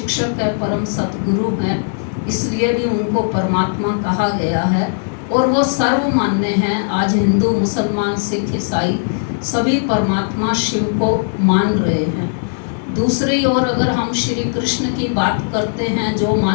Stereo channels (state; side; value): silent; right; digital silence